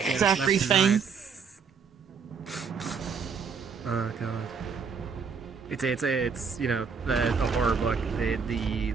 It's left and everything. right. Oh god. It's you know a horror book.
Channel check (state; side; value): quieter; left; 5.8 dB